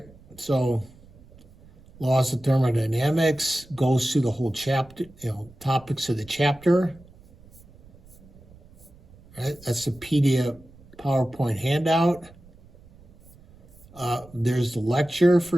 so laws of thermodynamics goes through the whole chapter, topics of the chapter. All right, that's the PDF PowerPoint handout. There's the lecture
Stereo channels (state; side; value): noise; right; rumble, 25 dB below the sound